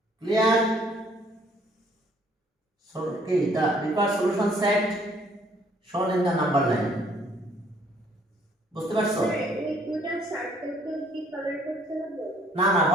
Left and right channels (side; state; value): both; normal; correlation 0.62